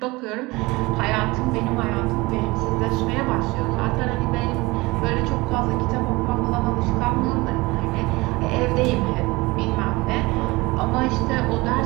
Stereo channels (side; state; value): left; quieter; 22.6 dB